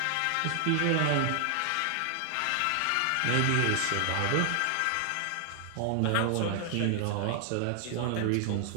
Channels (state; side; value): different; both; correlation 0.00